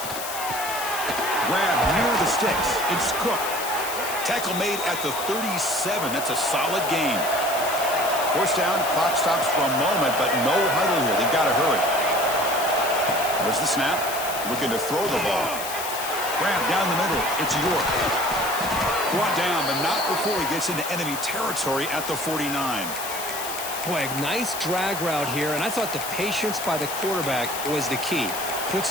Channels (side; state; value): left; noise; hiss, 7 dB below the sound